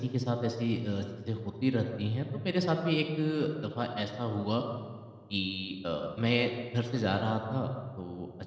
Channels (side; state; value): both; identical; correlation 1.00